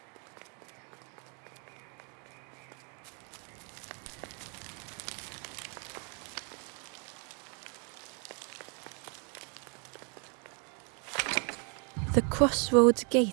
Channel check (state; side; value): quieter; left; 36.8 dB